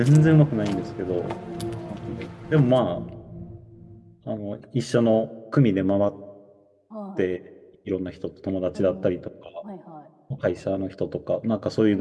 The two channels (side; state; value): both; identical; correlation 1.00